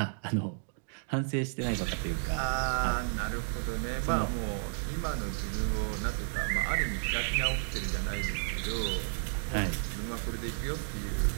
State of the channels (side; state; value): left; silent; digital silence